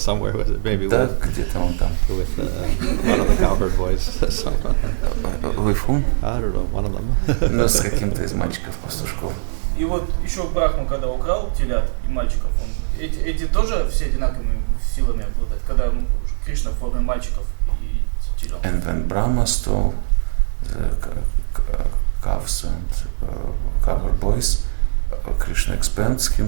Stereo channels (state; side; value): silent; left; digital silence